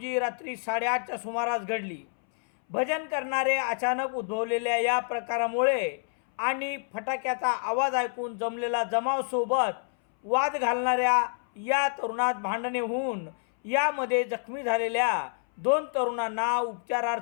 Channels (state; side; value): silent; right; 59 dB below the other